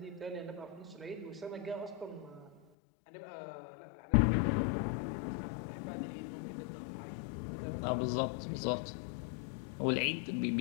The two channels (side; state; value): right; drops out; at 2.6 s